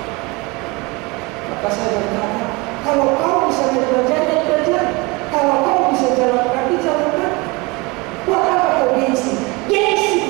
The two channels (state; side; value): quieter; left; 25.8 dB